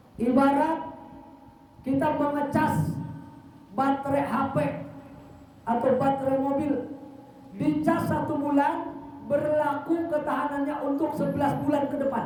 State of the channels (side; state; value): both; identical; correlation 1.00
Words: Ibarat kita mengecas baterai HP atau baterai mobil, dicas 1 bulan, berlaku ketahanannya untuk 11 bulan ke